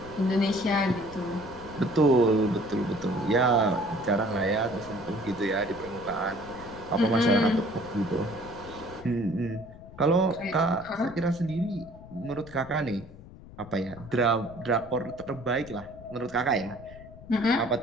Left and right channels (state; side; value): noise; left; rumble, 18 dB below the sound